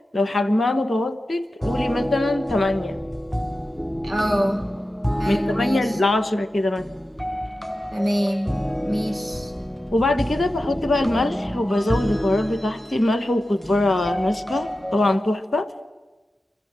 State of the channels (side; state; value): both; normal; correlation 0.93